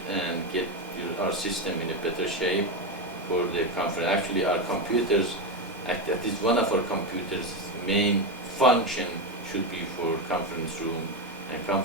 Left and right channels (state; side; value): normal; both; correlation 0.12